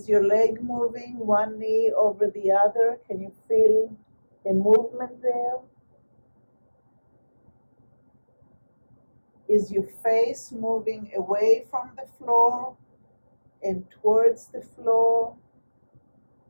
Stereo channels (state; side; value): inverted; both; correlation -1.00